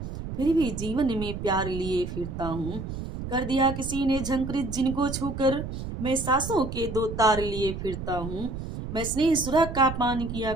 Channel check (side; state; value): right; noise; rumble, 7 dB below the sound